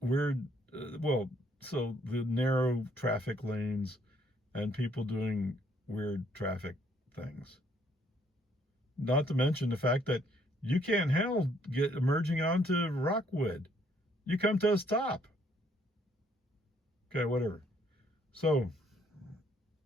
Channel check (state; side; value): normal; both; correlation 0.67